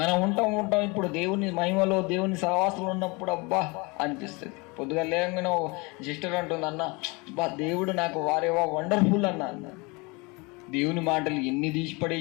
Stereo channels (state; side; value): quieter; right; 27.4 dB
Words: ఉంటాం ఇప్పుడు దేవుని మహిమలో దేవుని సహవాసంలో ఉన్నప్పుడు అబ్బా అనిపిస్తుంది. పొద్దుగా లేకుండా సిస్టర్ అంటుంది, అన్న బా దేవుడు నాకు వారేవా వండర్ఫుల్ అన్న. దేవుని మాటలు ఎన్ని తీసి